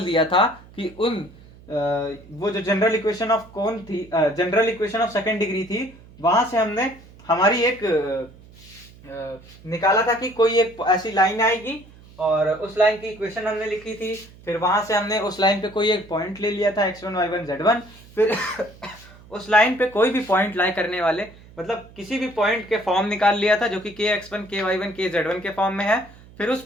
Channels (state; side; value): noise; right; hum, 22 dB below the sound